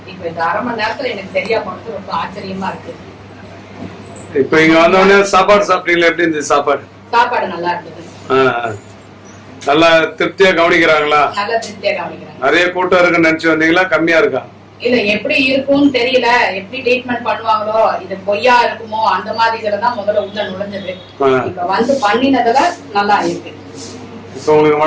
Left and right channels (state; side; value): identical; both; correlation 1.00